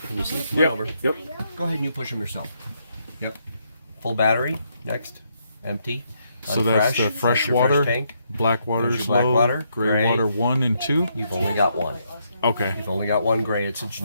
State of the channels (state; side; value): inverted; both; correlation -0.76